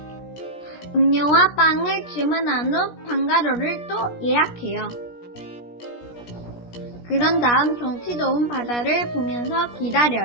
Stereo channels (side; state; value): right; late; 17 ms